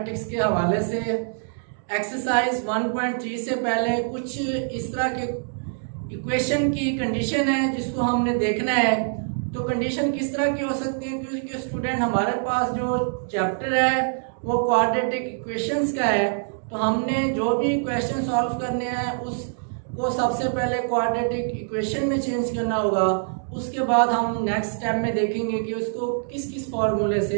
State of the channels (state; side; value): silent; left; digital silence